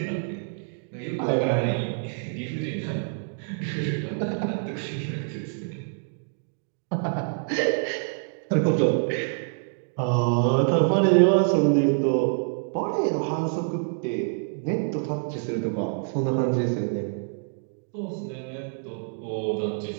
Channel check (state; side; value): silent; left; digital silence